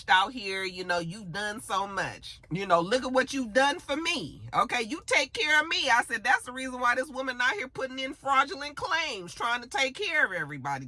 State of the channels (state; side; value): identical; both; correlation 1.00